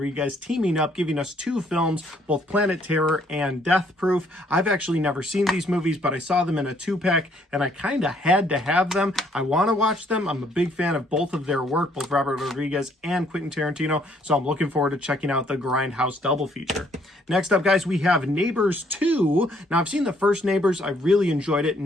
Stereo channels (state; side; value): normal; both; correlation 0.66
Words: teaming up, giving us 2 films, both Planet Terror and Death Proof. I've actually never seen these movies, but I saw them in a 2-pack, and I kind of had to have them. I want to watch them. I'm a big fan of both of their work, both Robert Rodriguez and Quentin Tarantino, so I'm looking forward to checking out the Grindhouse double feature. Next up, guys, we have Neighbors 2. Now, I've seen the first Neighbors. I really enjoyed it.